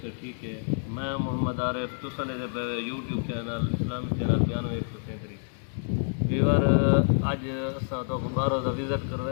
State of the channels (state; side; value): silent; right; digital silence